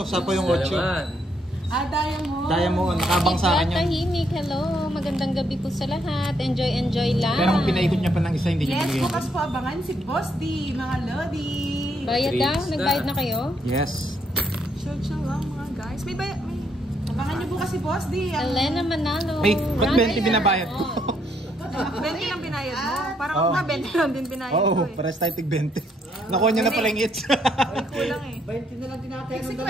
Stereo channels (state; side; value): normal; both; correlation 0.73